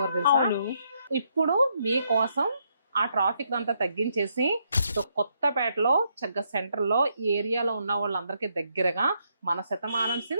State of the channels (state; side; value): inverted; both; correlation -0.76